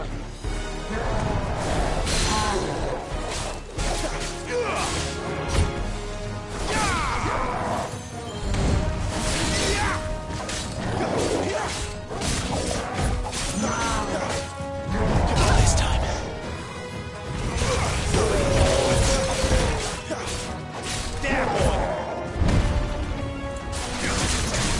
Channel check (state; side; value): identical; both; correlation 1.00